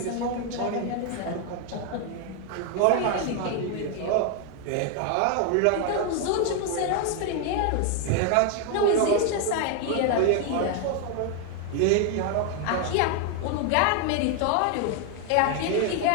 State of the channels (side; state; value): both; different; correlation 0.01